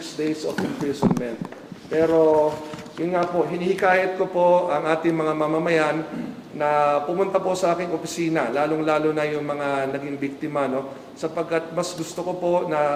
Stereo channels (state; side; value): identical; both; correlation 1.00